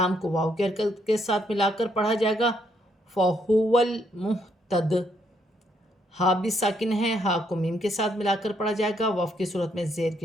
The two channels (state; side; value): normal; both; correlation 0.73